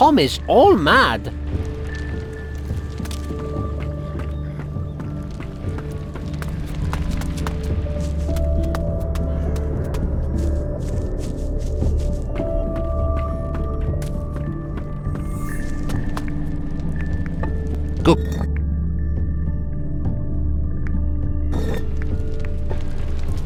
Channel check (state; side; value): identical; both; correlation 1.00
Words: all mad. Go.